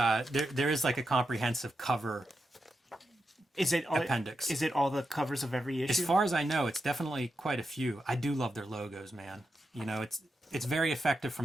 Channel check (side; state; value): both; normal; correlation 0.87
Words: is like a comprehensive cover. Is it appendix? Is it all the covers of every issue? As far as I know, it's definitely quite a few. I do love their logos, man. It's very effective